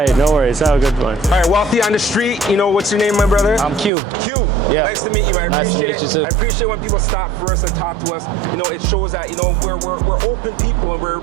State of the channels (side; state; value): left; drops out; at 3.9 s